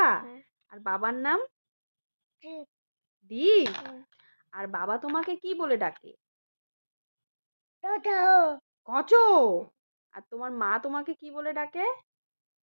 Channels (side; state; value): both; inverted; correlation -1.00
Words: হ্যাঁ। আর বাবার নাম? দীপ। দীপ? হুম। আর বাবা তোমাকে কি বলে ডাকে? দাদা। কচো? আর তোমার মা তোমাকে কি বলে ডাকে?